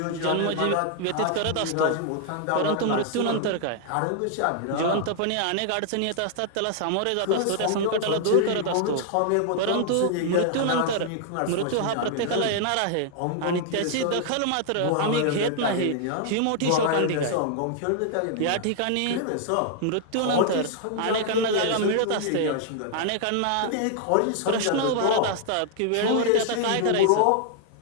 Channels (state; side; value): different; both; correlation -0.01